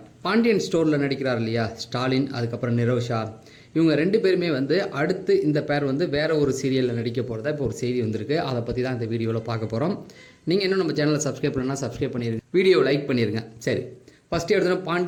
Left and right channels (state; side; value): identical; both; correlation 1.00